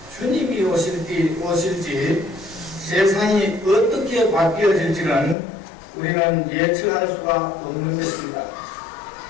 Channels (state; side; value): drops out; right; at 5.4 s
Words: 주님이 오실지 세상이 어떻게 바뀌어질지는 우리는 예측할 수가 없는 것입니다.